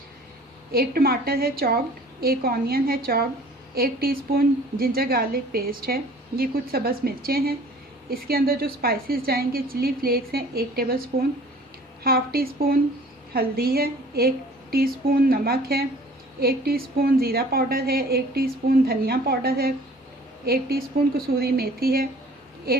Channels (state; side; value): normal; both; correlation 0.50